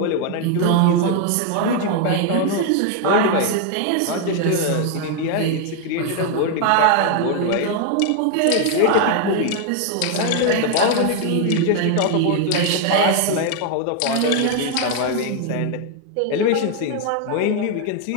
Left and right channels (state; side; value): different; both; correlation 0.01